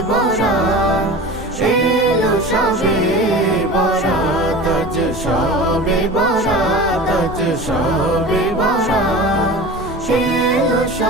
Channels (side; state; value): both; normal; correlation 0.35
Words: বরাত, এলো শবে বরাত, আজ শবে বরাত, আজ শবে বরাত, এলো